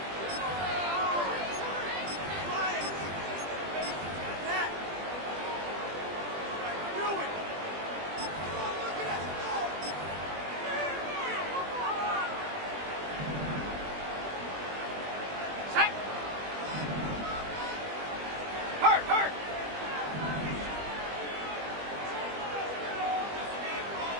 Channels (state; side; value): late; left; 20 ms